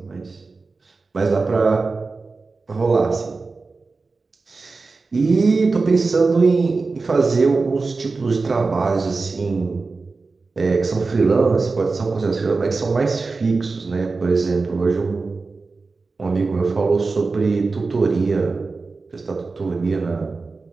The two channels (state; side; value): quieter; left; 4.0 dB